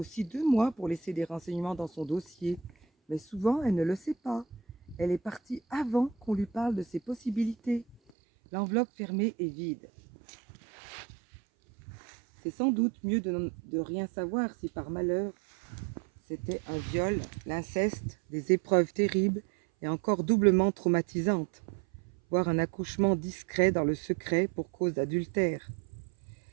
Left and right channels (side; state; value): left; drops out; at 8.1 s